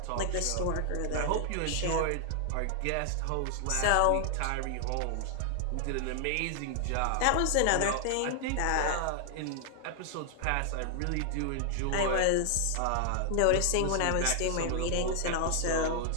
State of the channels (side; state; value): both; different; correlation 0.00